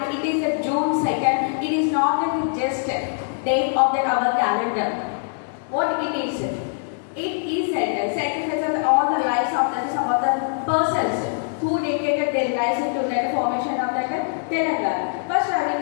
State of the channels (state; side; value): silent; right; digital silence